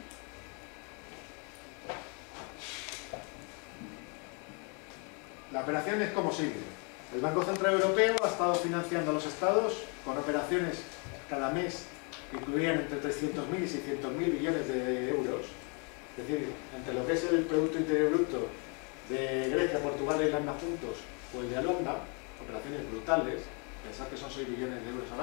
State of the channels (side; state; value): right; quieter; 35.4 dB